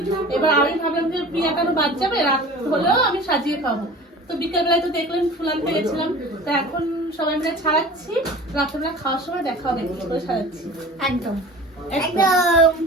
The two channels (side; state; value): both; normal; correlation 0.40